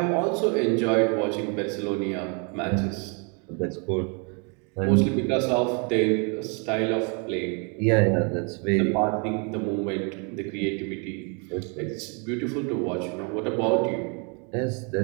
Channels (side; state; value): left; quieter; 35.9 dB